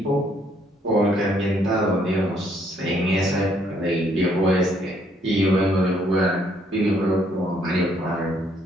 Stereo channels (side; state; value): both; normal; correlation 0.67